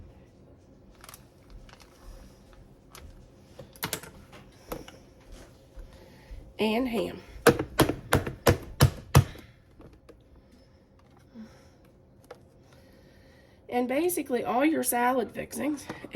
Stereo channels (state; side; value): identical; both; correlation 1.00